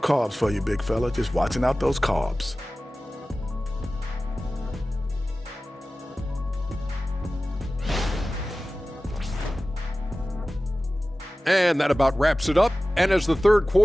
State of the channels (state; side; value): normal; both; correlation 0.96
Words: for you, big fella. Just watching out those carbs. And that about wraps it up. And as the third